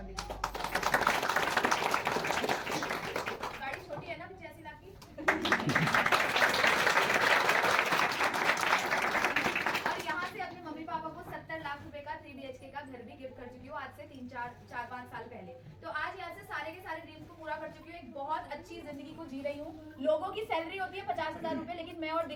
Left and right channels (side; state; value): both; identical; correlation 1.00